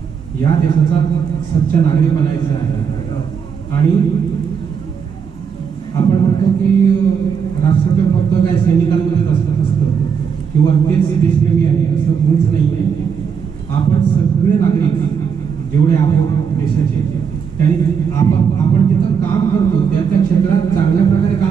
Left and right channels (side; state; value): left; quieter; 6.7 dB